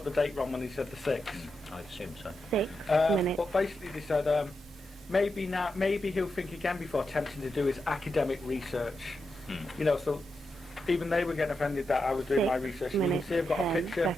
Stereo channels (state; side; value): normal; both; correlation 0.87